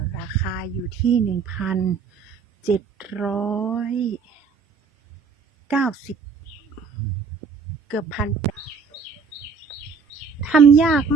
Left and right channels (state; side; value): quieter; left; 5.3 dB